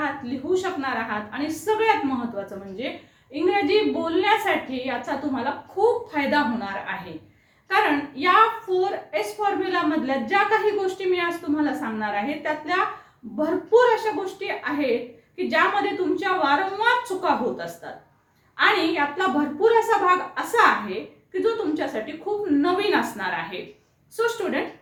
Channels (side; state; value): both; identical; correlation 1.00